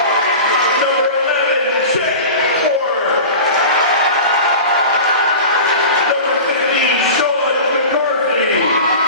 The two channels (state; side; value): inverted; both; correlation -0.33